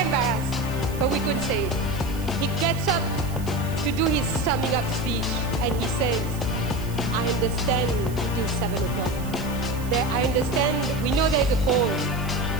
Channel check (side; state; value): right; noise; hiss, 17 dB below the sound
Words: but we couldn't say it. He gets up to do his summing up speech, and he says, I understand it is 7 o'clock. I understand, we know there's a call.